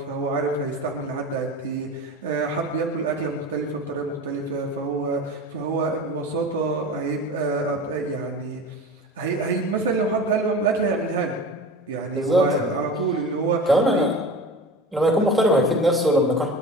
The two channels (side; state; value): both; normal; correlation 0.33